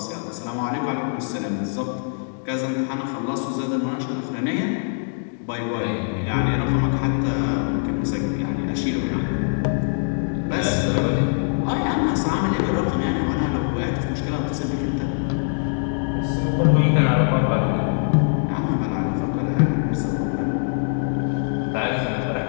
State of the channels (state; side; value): silent; right; digital silence